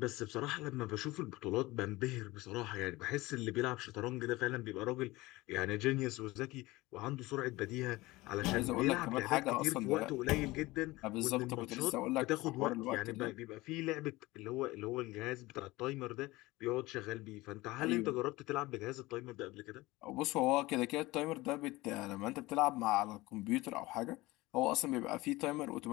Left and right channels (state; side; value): quieter; right; 20.2 dB